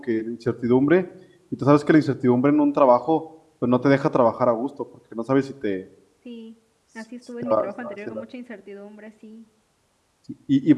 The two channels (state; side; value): identical; both; correlation 1.00